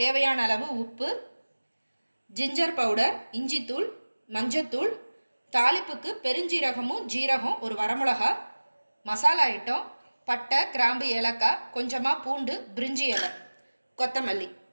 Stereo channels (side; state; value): both; inverted; correlation -1.00